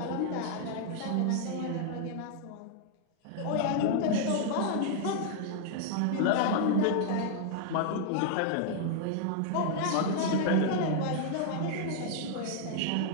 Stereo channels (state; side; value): different; both; correlation -0.01